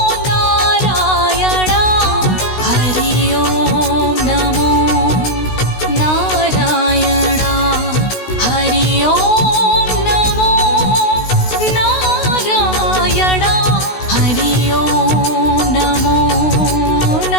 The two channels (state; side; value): late; right; 16 ms